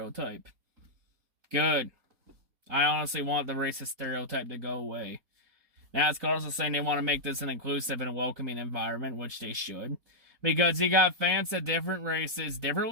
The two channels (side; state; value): left; late; 4.2 ms